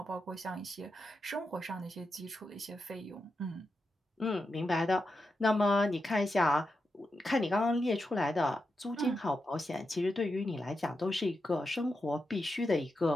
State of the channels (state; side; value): normal; both; correlation 0.87